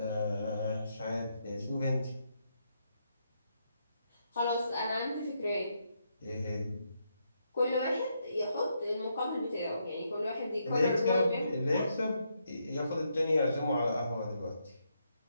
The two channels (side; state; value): both; inverted; correlation -0.79